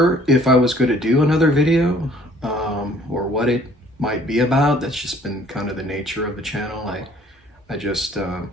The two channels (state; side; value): normal; both; correlation 0.57